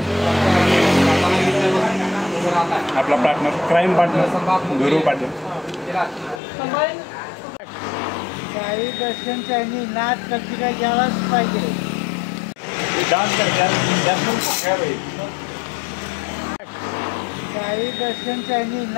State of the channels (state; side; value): drops out; right; at 6.4 s